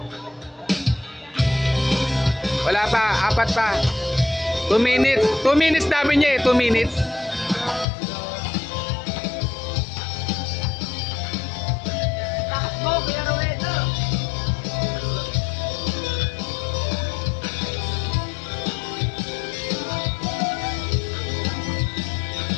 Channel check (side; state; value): right; drops out; at 7.9 s